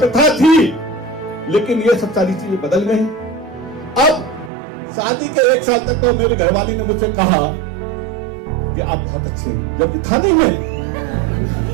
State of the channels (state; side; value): drops out; left; at 4.5 s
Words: थी, लेकिन ये सब सारी चीजें बदल गई। अब शादी के 1 साल तक तो मेरे घरवाली ने मुझसे कहा कि आप बहुत अच्छे हैं, जब था नहीं मैं।